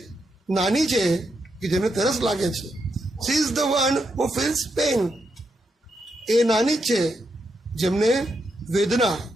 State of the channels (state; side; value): normal; both; correlation 0.82